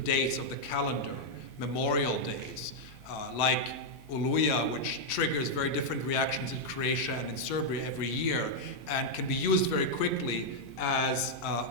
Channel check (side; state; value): both; normal; correlation -0.03